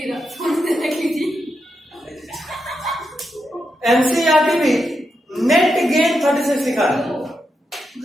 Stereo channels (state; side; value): normal; both; correlation 0.85